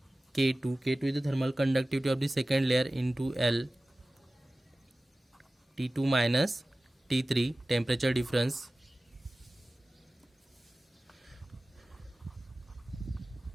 K2 is the thermal conductivity of the second layer into L T2 minus T3 temperature difference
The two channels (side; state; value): both; normal; correlation 0.97